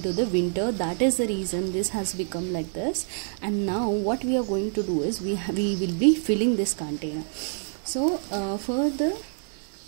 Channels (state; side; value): silent; left; 60 dB below the other